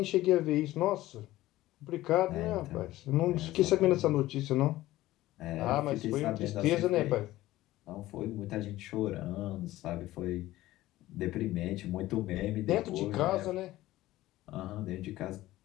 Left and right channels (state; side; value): quieter; right; 16.3 dB